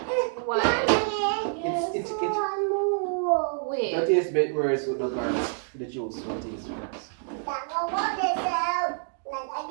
Why? It's Wait. that tastes a bit worse with the garlic. The juice will taste worse.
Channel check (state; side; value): silent; left; digital silence